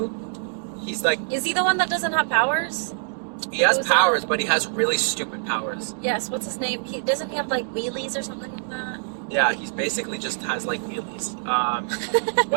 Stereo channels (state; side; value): silent; left; digital silence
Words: He's Is he the one that doesn't have powers? he has Who's powers, that? but he has really stupid powers. Yes, what's his name? Doesn't he have wheelies or something like that? Yeah, he's basically just has wheelies.